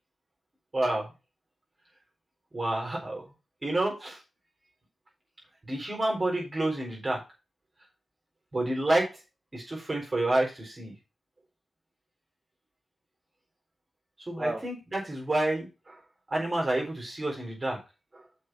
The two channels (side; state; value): both; normal; correlation 0.96